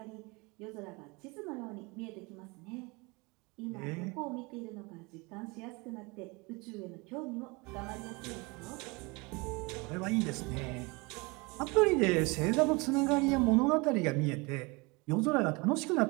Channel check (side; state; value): left; quieter; 26.9 dB